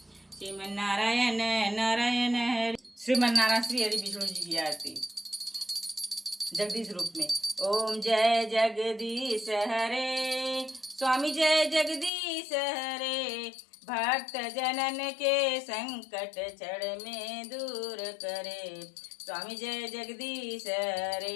श्रीमन नारायण नारायण हरि। श्रीमन नारायण श्री हरि विष्णु जी की आरती जगदीश रूप में। ओम जय जगदीश हरे स्वामी जय जगदीश हरे, भक्त जनन के संकट क्षण में दूर करे। स्वामी जय जगदीश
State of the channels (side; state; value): right; drops out; at 12.1 s